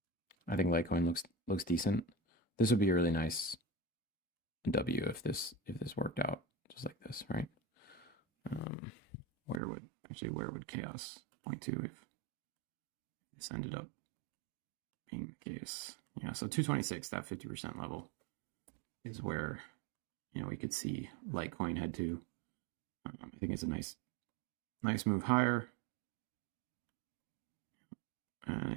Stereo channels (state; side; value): drops out; left; at 9.6 s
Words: I think Litecoin looks decent. This would be a really nice W if this worked out just like this, right? Where would chaos point to if this ended up being the case? Yeah, so 226, that 50% level is where we could see Litecoin head to. I think it's a nice move higher,